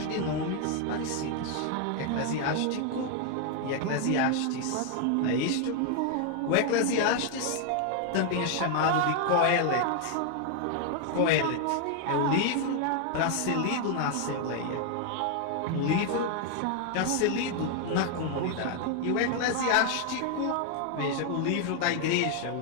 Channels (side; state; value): both; different; correlation 0.00